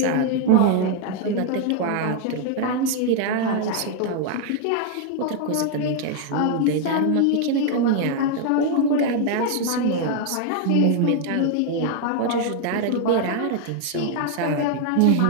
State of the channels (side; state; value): both; different; correlation 0.00